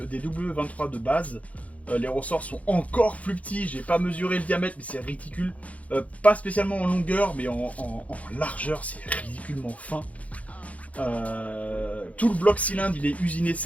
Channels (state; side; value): late; right; 0.067 ms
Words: W23 de base, les ressorts sont encore plus petits. J'ai pas mesuré le diamètre, mais c'est ridicule. Pas spécialement en longueur, mais en largeur, c'est ridiculement fin. Tout le bloc cylindre, il est usiné